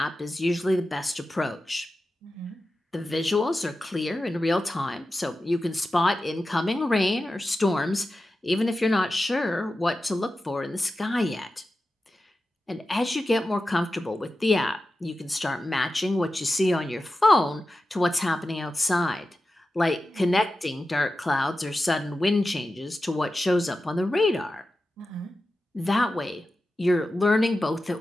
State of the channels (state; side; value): normal; both; correlation 0.93